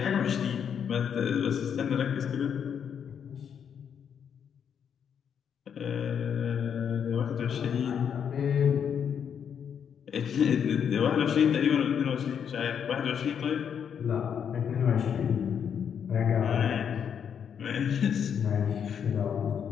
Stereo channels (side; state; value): right; quieter; 7.8 dB